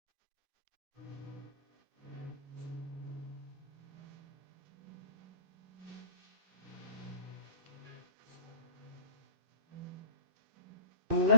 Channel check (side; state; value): left; late; 2.6 ms